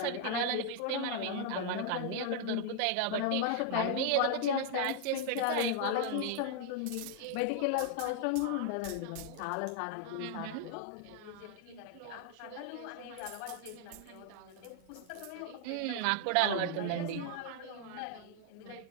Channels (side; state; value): both; different; correlation 0.00